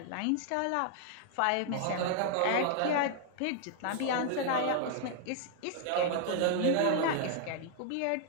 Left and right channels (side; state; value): both; different; correlation 0.00